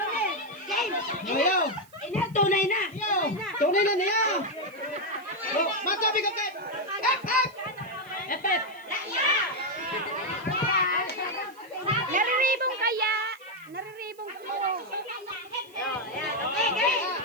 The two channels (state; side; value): noise; right; hiss, 27 dB below the sound